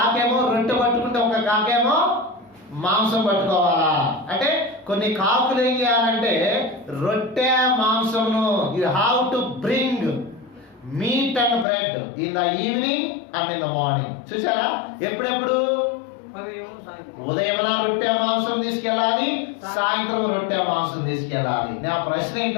రొట్టె పట్టుకుంటే ఒక కాకేమో మాంసం పట్టుకోవాలా. అంటే కొన్ని కాకులు ఏం చేయాలంటే రొట్టె మాంసమును you have to bring meat and bread in the evening and in the morning. చూసారా? ఎప్పుడెప్పుడు? ఉదయమున రొట్టె మాంసం తీసుకెళ్ళాలి, సాయంత్రం రొట్టె మాంసం తీసుకెళ్ళాలి. నా ప్రశ్న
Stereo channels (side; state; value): right; drops out; at 11.7 s